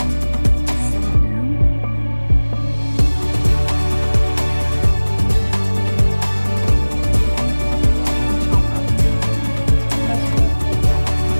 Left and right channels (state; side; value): inverted; both; correlation -1.00